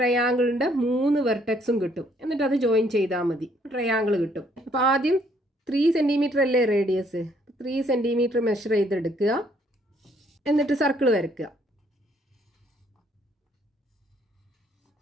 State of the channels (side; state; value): both; normal; correlation 0.66